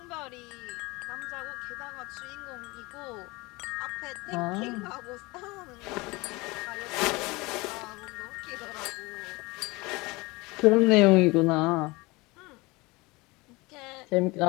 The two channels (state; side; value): quieter; right; 23.7 dB